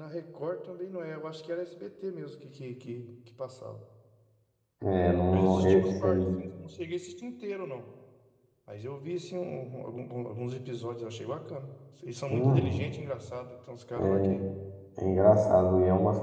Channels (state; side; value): identical; both; correlation 1.00